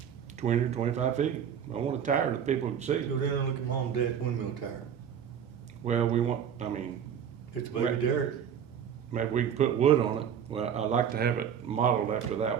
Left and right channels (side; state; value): left; quieter; 8.3 dB